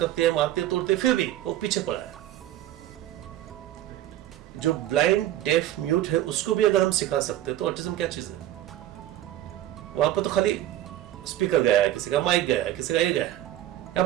है, मारती है, तोड़ती है, फिर भी वो पीछे पड़ा है. जो ब्लाइंड डेफ म्यूट है उसको भी अगर हम सिखा सकते हैं तो ऑटिज्म क्या चीज है. वहां पर तो खाली स्पीकर गया है, किसी का माइक गया है, किसी का ये गया है. यहाँ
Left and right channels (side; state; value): left; quieter; 13.4 dB